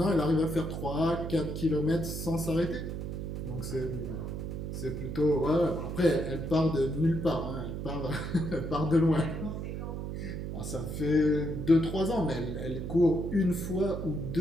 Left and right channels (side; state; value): right; noise; hum, 5 dB below the sound